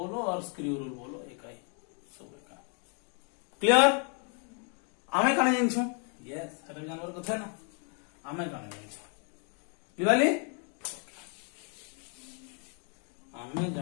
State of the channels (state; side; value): quieter; right; 39.7 dB